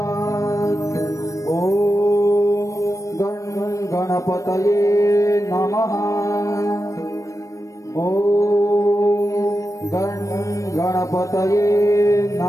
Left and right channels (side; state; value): right; late; 0.16 ms